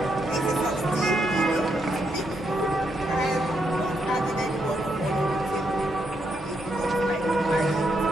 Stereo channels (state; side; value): normal; both; correlation 0.79